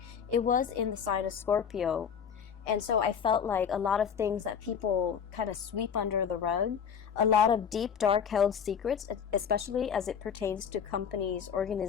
It was in the sign of Scorpio, And so I felt like a lot of things that people kind of sweep under the rug, a lot of deep, dark held secrets, especially as it pertains to companies,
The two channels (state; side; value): quieter; right; 7.4 dB